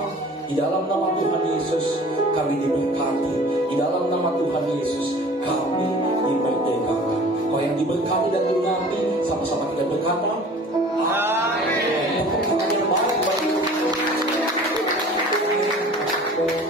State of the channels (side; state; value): both; normal; correlation 0.45